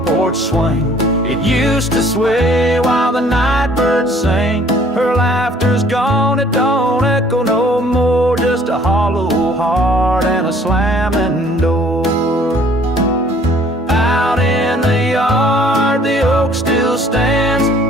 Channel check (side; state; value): both; normal; correlation 0.57